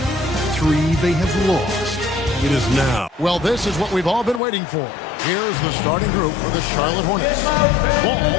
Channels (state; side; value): drops out; right; at 4.4 s